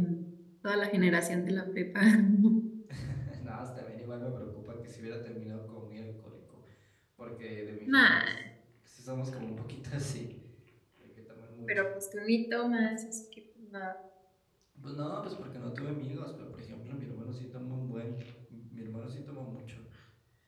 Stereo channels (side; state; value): both; identical; correlation 1.00